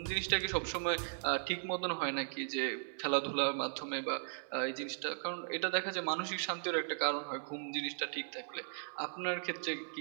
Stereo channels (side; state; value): left; silent; digital silence